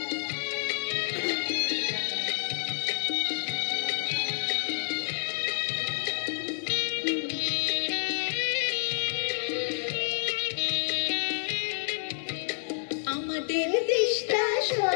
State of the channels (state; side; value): silent; right; digital silence